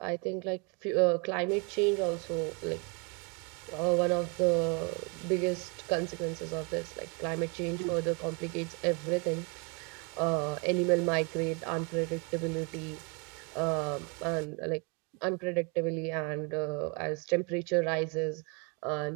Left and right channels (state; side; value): quieter; left; 32.4 dB